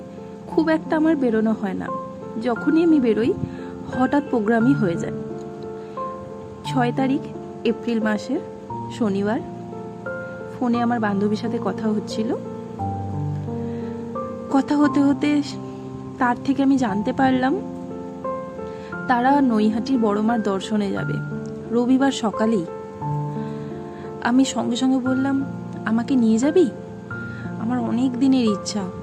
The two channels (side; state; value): both; identical; correlation 1.00